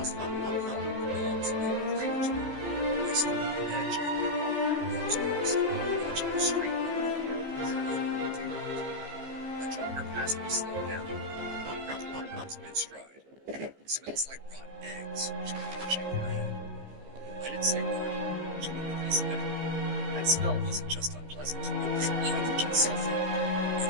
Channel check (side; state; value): left; late; 15 ms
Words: have been a hollow belongs to the drainage room. I stood at the edge of the Rose Crest, watching the street a jogger passed me slowed down. Wrinkled her nose mid-stride. Smells like rotten eggs. She couldn't shake her head. I didn't say a word. She wouldn't listen anyway. That smell wasn't just unpleasant. It was hydrogen sulfide. In